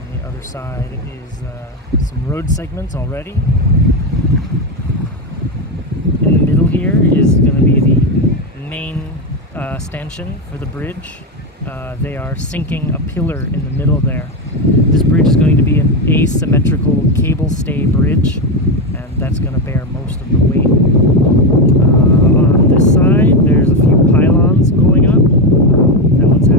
the other side is some road segments already. In the middle here is going to be the main stanchion for the bridge. They are sinking a pillar in the middle there. This bridge is going to be an asymmetrical cable stay bridge, and that's going to bear most of the weight. On this side, there's a few pylons going up. That one's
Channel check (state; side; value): normal; both; correlation 0.11